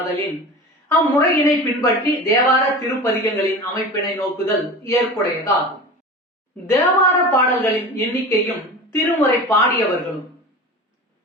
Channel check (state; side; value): normal; both; correlation 0.33